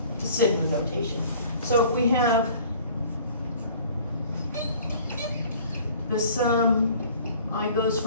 the sigma notation. So if we have the sum, I goes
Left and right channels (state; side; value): inverted; both; correlation -0.50